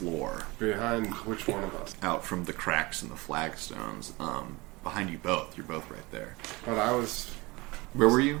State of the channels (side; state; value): left; quieter; 23.6 dB